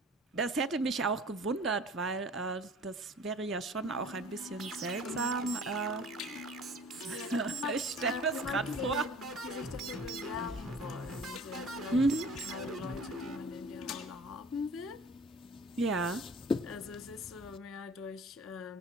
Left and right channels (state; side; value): normal; both; correlation 0.46